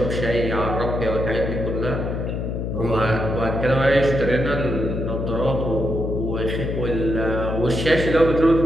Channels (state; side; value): noise; left; hum, 3 dB below the sound